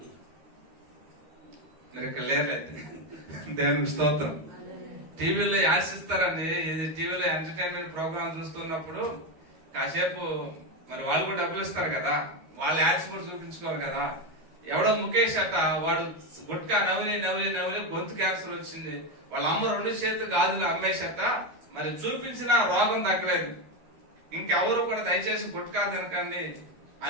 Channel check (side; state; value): left; late; 12 ms